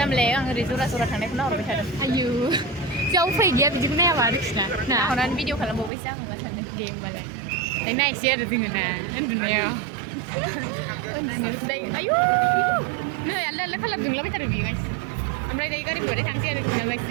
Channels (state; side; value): drops out; left; at 5.9 s